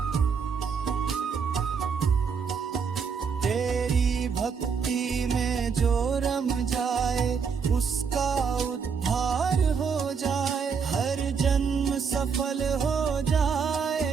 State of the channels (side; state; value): left; quieter; 6.0 dB